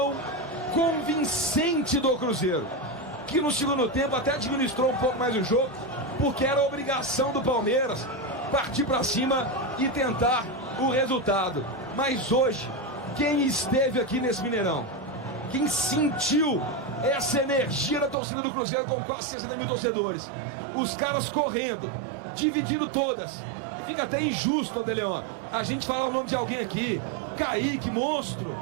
convincente do Cruzeiro, que no segundo tempo até administrou um pouco mais o jogo, porque era obrigação do Palmeiras partir para cima e tentar o resultado. Mas hoje, quem esteve aqui nesse Mineirão, quem sentiu essa energia da torcida do Cruzeiro com quase 60 mil torcedores, os caras correndo, dividindo todas. Fica até injusto, André Leão, a gente fala o nome de alguém aqui: Kaique, monstro;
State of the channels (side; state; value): left; drops out; at 18.2 s